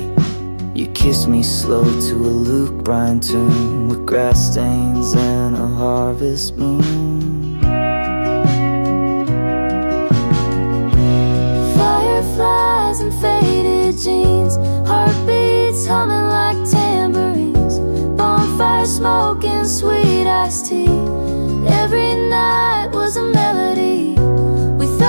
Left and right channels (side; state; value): both; inverted; correlation -1.00